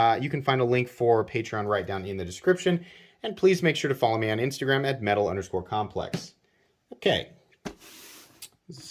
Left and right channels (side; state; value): both; identical; correlation 1.00